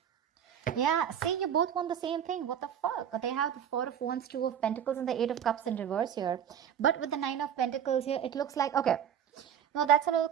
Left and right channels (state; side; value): quieter; left; 8.9 dB